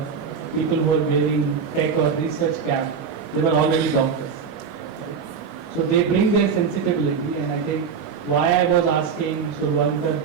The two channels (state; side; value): quieter; left; 6.2 dB